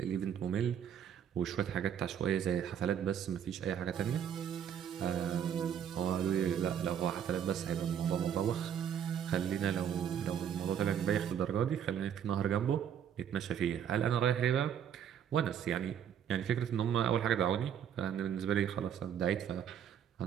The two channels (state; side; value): quieter; left; 8.9 dB